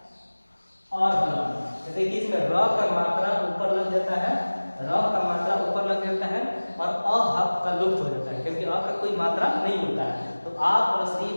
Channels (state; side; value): inverted; both; correlation -1.00